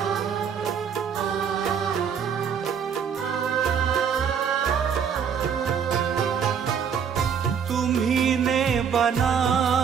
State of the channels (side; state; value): left; quieter; 7.2 dB